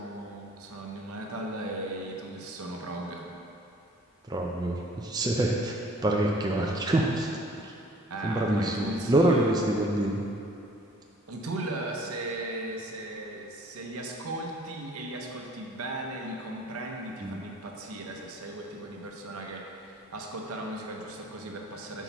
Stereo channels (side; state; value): both; normal; correlation 0.55